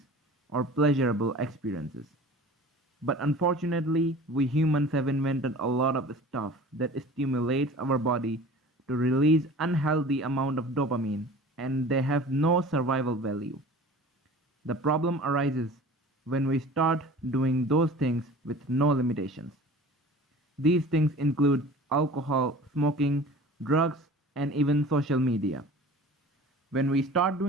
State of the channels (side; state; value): both; normal; correlation 0.42